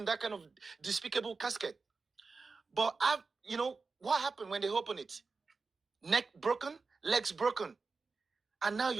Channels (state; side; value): quieter; left; 4.3 dB